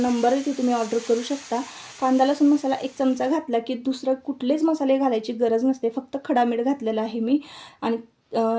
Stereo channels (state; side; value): identical; both; correlation 1.00